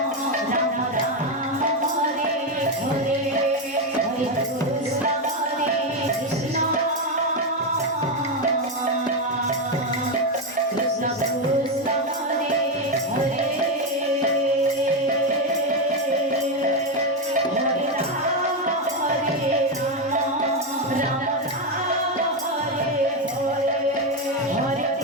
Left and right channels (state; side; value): normal; both; correlation 0.08